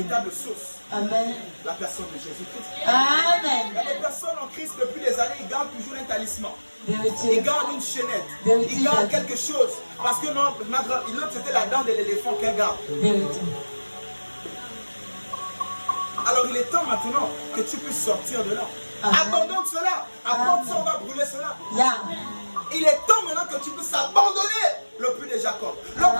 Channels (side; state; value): both; inverted; correlation -1.00